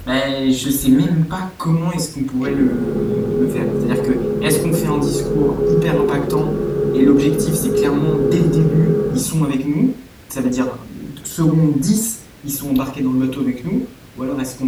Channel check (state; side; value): identical; both; correlation 1.00